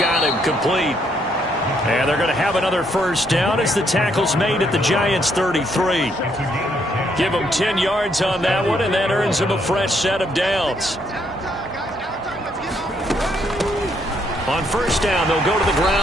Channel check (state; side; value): normal; both; correlation 0.72